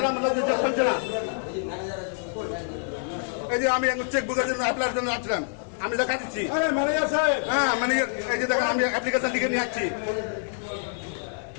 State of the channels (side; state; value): right; silent; digital silence